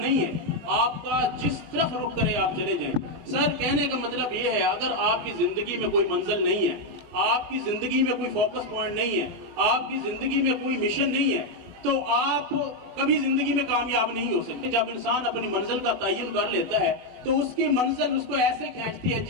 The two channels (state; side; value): late; left; 20 ms